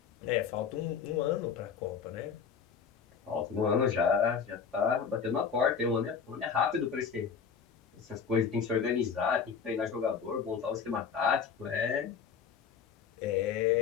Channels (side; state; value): right; quieter; 6.5 dB